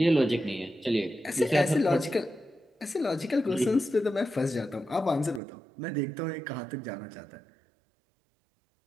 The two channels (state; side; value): drops out; left; at 5.4 s